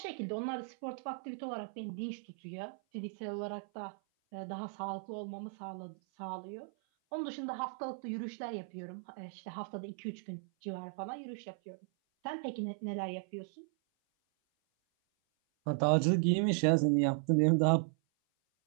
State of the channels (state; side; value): silent; left; 53 dB below the other